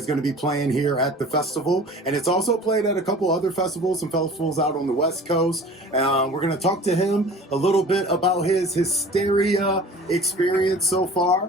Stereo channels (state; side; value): normal; both; correlation 0.43